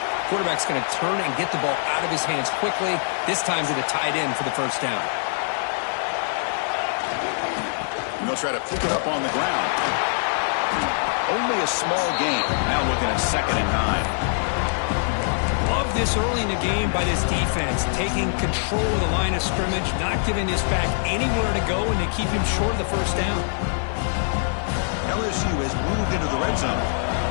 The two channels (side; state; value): right; silent; digital silence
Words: Quarterback's going to turn and get the ball out of his hands quickly, this time to the tight end for the first down. And they'll try to pick it up on the ground. Only a small gain. Now looking at 2nd and 9. Love this early in the game by this defense, taking control of the line of scrimmage, not giving this back anywhere to go, and they keep him short of the first down. LSU has moved into the red zone.